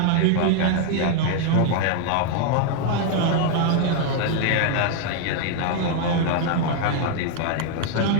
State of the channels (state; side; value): different; both; correlation 0.00